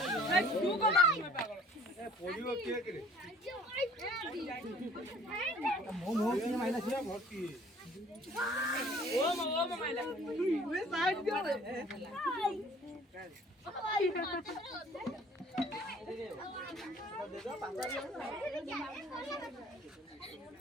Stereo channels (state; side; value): normal; both; correlation 0.54